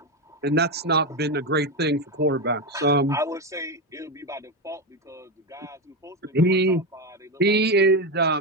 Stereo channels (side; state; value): both; normal; correlation 0.12